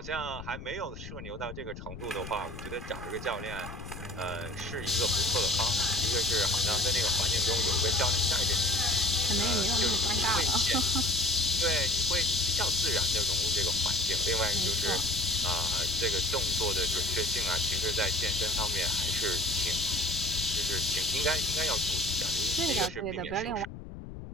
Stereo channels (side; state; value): left; noise; rumble, 12 dB below the sound